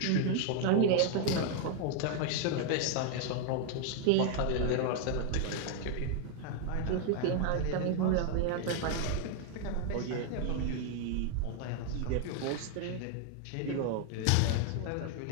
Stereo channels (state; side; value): different; both; correlation 0.00